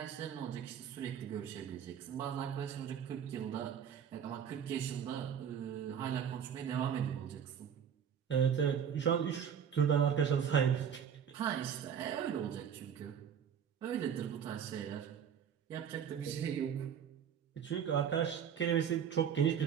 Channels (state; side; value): quieter; left; 8.2 dB